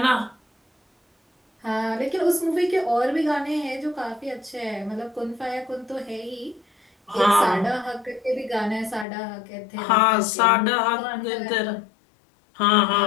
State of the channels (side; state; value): right; drops out; at 9.1 s